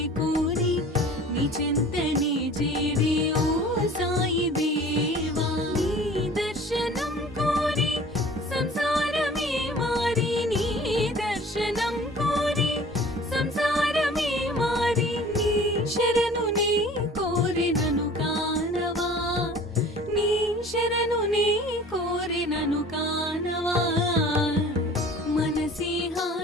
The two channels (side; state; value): both; normal; correlation 0.46